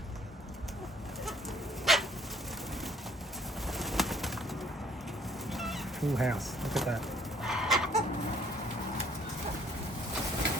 Full house, look at that.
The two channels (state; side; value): normal; both; correlation 0.61